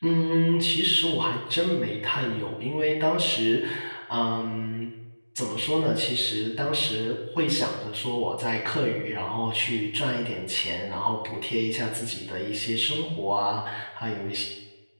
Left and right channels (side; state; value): both; inverted; correlation -1.00